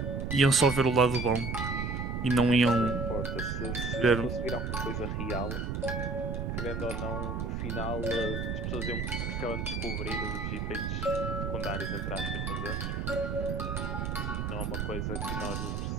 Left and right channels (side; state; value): right; noise; rumble, 2 dB below the sound